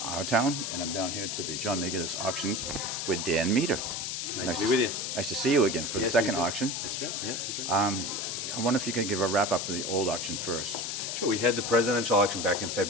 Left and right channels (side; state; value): left; noise; hiss, 3 dB below the sound